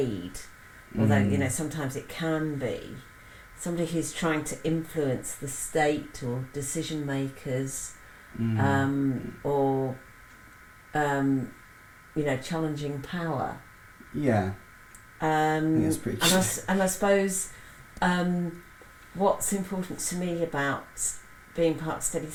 although sometimes it can be. Somebody who's trying to influence the state or decision makers, or challenging power. Yeah. That's pretty true. And I suppose what's important to me about being part of Steady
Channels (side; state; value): both; identical; correlation 1.00